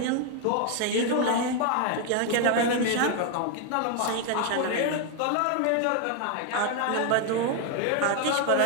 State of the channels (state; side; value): different; both; correlation 0.01